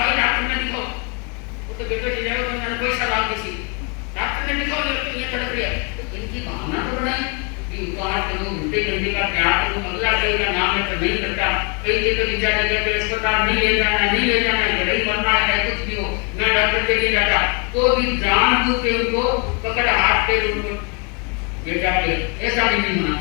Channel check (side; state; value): right; quieter; 34.1 dB